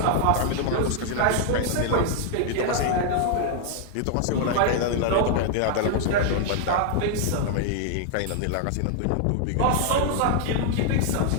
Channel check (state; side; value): different; both; correlation -0.01